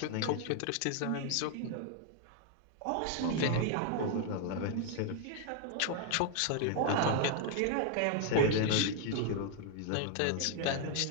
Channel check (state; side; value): different; both; correlation 0.00